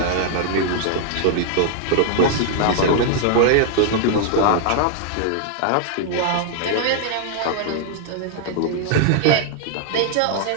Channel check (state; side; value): different; both; correlation 0.00